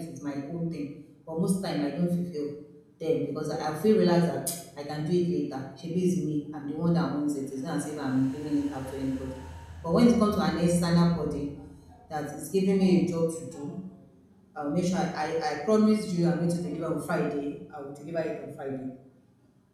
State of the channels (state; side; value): identical; both; correlation 1.00